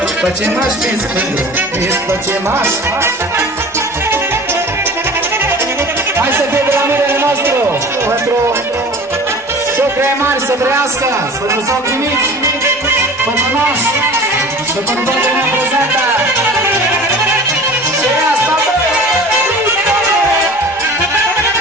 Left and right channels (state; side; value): normal; both; correlation 0.41